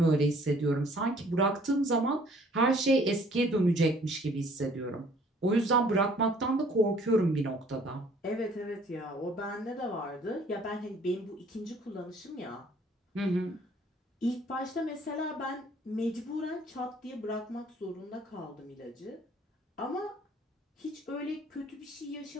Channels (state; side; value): normal; both; correlation 0.58